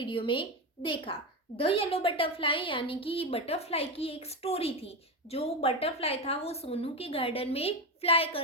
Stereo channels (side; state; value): both; normal; correlation 0.14